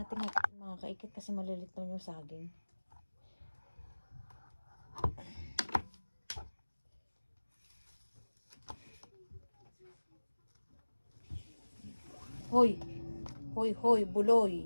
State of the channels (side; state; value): both; inverted; correlation -1.00